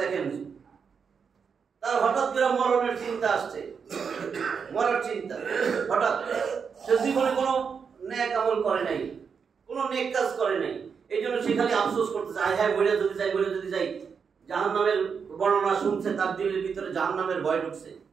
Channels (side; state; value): left; quieter; 6.2 dB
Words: দেখেন। তার হঠাৎ করে মরণের চিন্তা আসছে, মরার চিন্তা হঠাৎ। সে জীবনে কোনো নেক আমল করে নাই, কোনো নেক কাজ করে নাই, এই জন্য সে খালি আফসোস করতেছে, আয় হ্যাঁ বলে যদি যাই। জাহান্নামের বর্ণনা শুনছে, তার দিলের ভিতরে জাহান্নামের ভয় ঢুকছে,